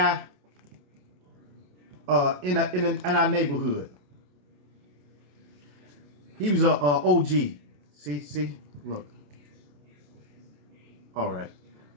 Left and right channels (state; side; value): late; left; 28 ms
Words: in our neighborhood. He was a OG. See, look. All right.